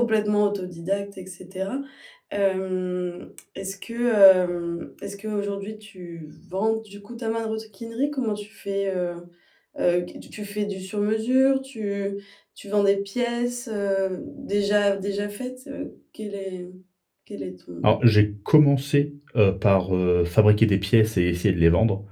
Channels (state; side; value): identical; both; correlation 1.00